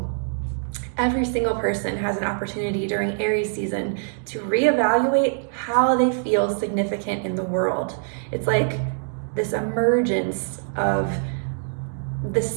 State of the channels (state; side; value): silent; left; digital silence